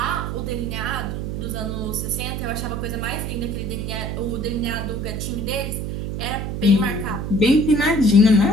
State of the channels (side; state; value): right; noise; hum, 3 dB below the sound